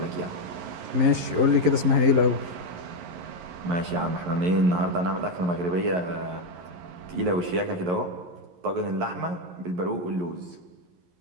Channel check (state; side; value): late; left; 11 ms